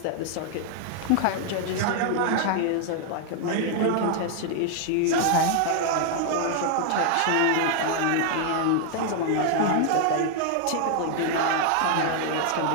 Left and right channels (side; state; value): both; different; correlation 0.00